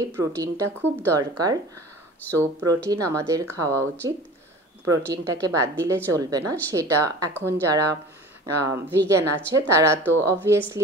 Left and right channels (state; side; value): normal; both; correlation 0.40